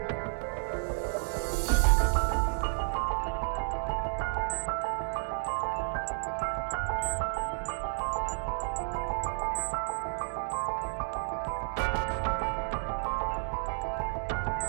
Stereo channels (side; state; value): left; silent; digital silence